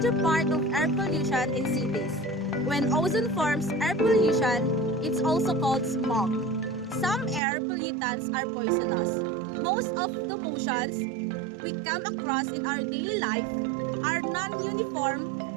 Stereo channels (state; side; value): drops out; left; at 7.4 s